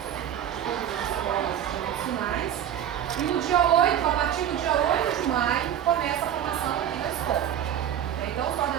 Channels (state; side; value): quieter; left; 10.2 dB